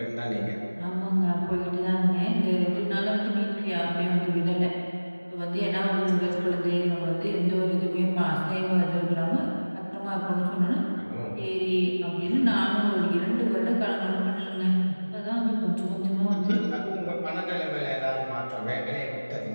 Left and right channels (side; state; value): both; inverted; correlation -1.00